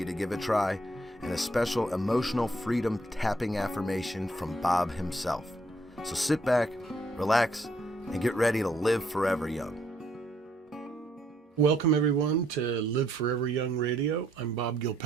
to give a try, and a special emotional freedom tapping affirmation from Bob himself. So sit back, relax, and get ready to live forever young. Welcome, everyone, to Live Forever Young Radio. I'm Bob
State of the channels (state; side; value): normal; both; correlation 0.70